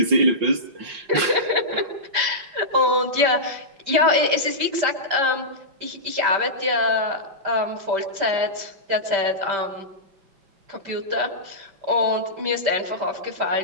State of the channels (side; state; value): left; late; 5.0 ms